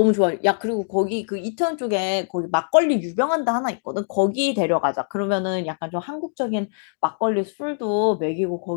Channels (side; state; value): right; silent; digital silence